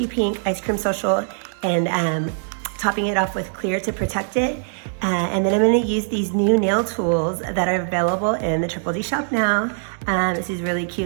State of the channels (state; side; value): silent; left; digital silence